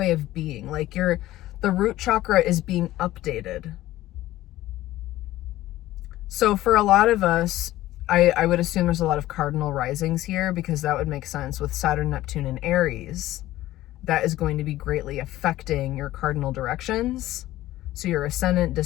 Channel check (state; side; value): quieter; right; 15.5 dB